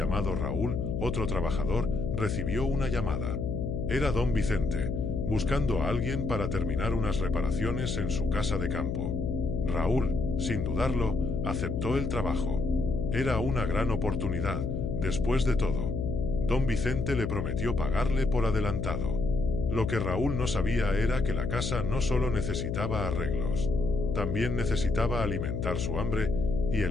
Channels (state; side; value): noise; left; hum, 2 dB below the sound